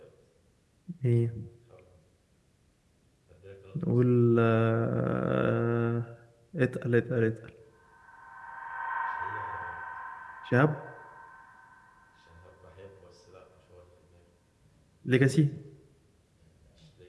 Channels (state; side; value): identical; both; correlation 1.00